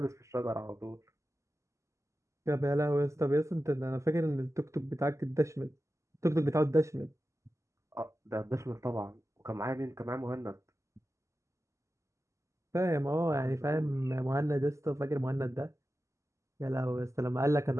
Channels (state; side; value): late; left; 0.14 ms